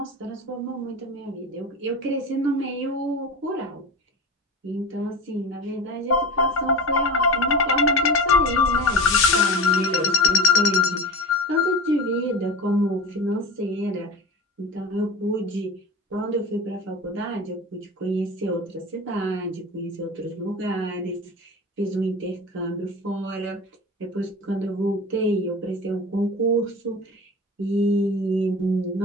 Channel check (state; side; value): normal; both; correlation 0.28